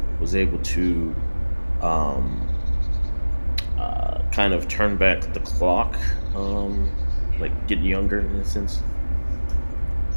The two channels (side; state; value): both; inverted; correlation -1.00